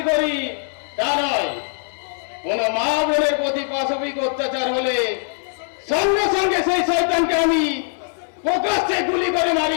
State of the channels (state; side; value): silent; right; 59 dB below the other